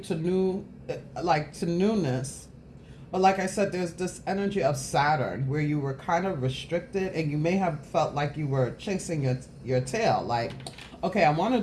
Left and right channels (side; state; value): both; identical; correlation 1.00